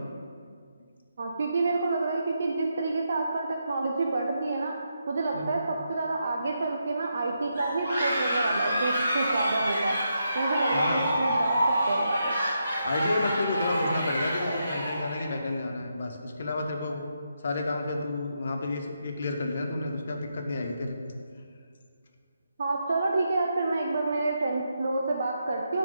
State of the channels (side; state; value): both; inverted; correlation -0.82